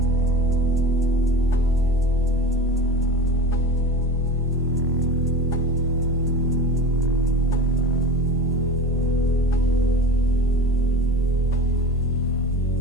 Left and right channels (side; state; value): both; normal; correlation 0.33